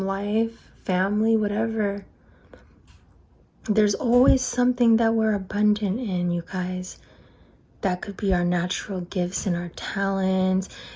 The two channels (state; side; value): identical; both; correlation 1.00